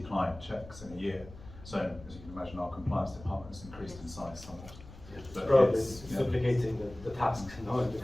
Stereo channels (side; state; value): left; noise; rumble, 17 dB below the sound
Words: client checks in a year. So as you can imagine, our compliance department has increased in size somewhat. But probably duplicating the task in